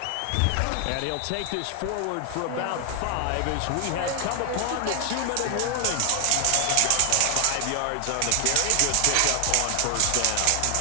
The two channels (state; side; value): different; both; correlation 0.00